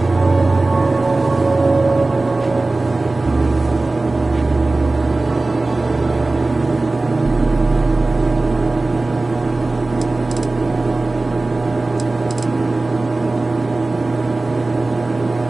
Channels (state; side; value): quieter; left; 3.2 dB